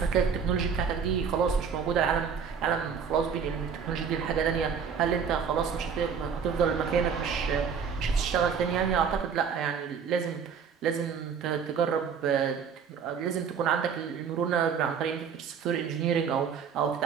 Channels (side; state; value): left; quieter; 6.7 dB